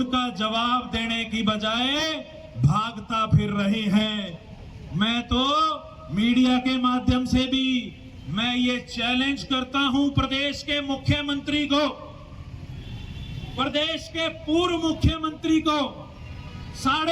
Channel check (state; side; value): identical; both; correlation 1.00